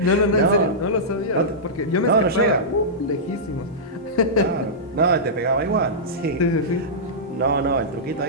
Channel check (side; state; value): both; normal; correlation -0.14